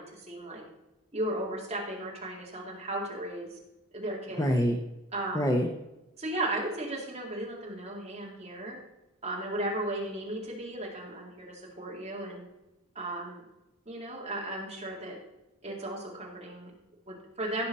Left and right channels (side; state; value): both; normal; correlation 0.39